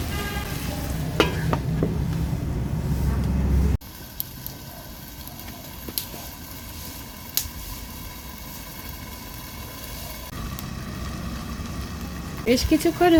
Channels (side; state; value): both; identical; correlation 1.00